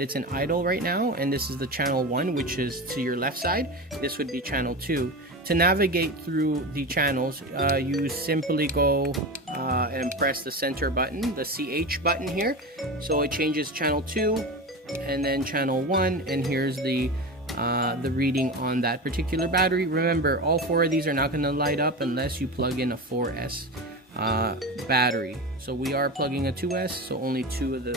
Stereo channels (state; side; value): normal; both; correlation 0.25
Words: it's in idle right now, and this is the channel 1, which is to your left side. This would be channel 2. To navigate through the channels, you simply go and press the center button, the CH button here. So it changes channel 2 and then channel 1, and here's the reading on that particular battery. Remember, all 4 of these are not going to light up unless you plug in a 4S battery. So we are plugging a 2S, so only 2 of